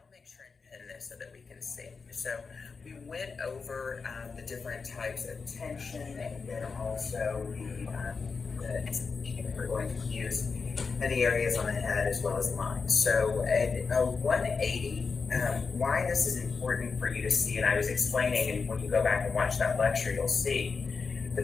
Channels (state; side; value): quieter; right; 4.9 dB